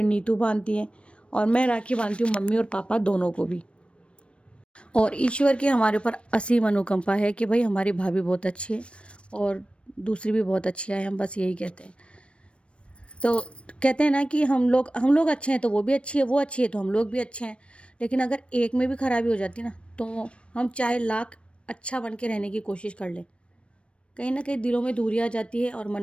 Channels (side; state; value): right; late; 0.060 ms